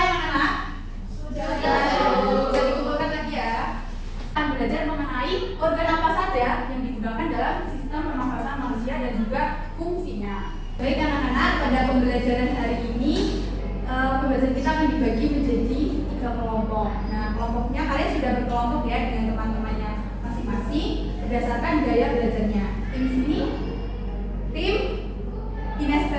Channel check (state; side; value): identical; both; correlation 1.00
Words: anak-anak? Sudah. Bisa dikumpulkan lagi ya. Akan belajar mengenai organ apa saja yang digunakan dalam sistem pernafasan manusia dan juga fungsinya. Baik anak-anak, pada pembelajaran hari ini pembelajaran kita akan dibagi menjadi 3 kelompok. Nah, kelompoknya kalian sudah berkelompok ya dengan teman-temannya masing-masing berdasarkan gaya belajarnya. Tim sini, tim